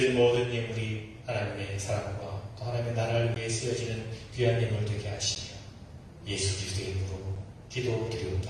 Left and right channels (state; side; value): identical; both; correlation 1.00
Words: 모든 예물이 하나님의 사랑과 또 하나님의 나라를 위해 쓰여지는 귀한 예물 되게 하시며 예수 그리스도의 이름으로